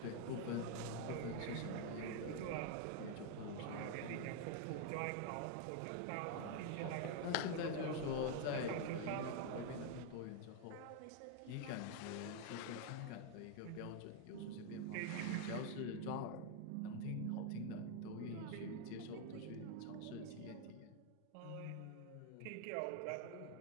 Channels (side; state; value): both; different; correlation 0.00